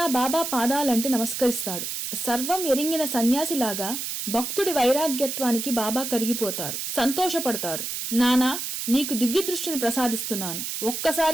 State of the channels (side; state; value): right; noise; hiss, 4 dB below the sound